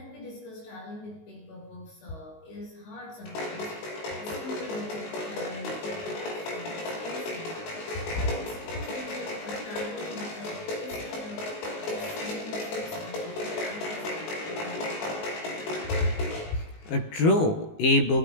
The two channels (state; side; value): late; right; 19 ms